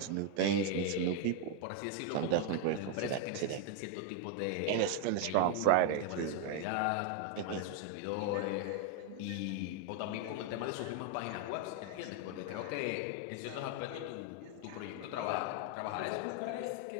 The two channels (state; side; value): different; both; correlation 0.00